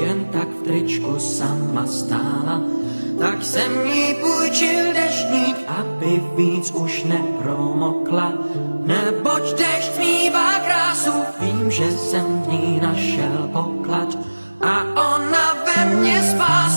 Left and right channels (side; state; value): both; inverted; correlation -1.00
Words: tak v tričku sama stála. Tak jsem jí půjčil deštník, aby víc už nepromokla. Neboť dešť smívá krásu, vím, že jsem v ní našel poklad. A ona ve mně